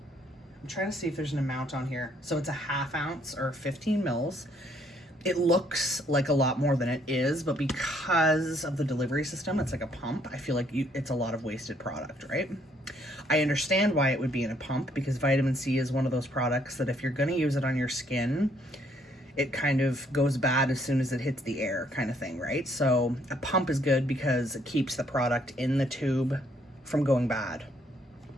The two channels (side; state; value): both; normal; correlation 0.67